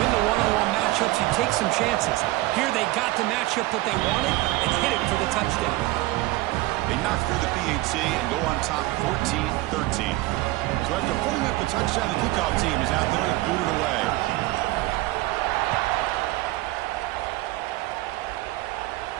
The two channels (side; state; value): left; quieter; 19.1 dB